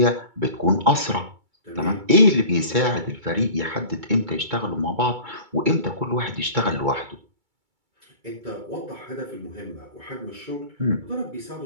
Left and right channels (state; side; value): late; left; 2.3 ms